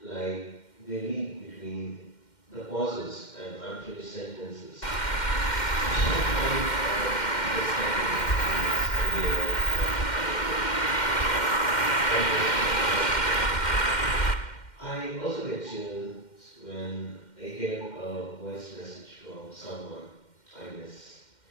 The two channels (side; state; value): right; late; 2.1 ms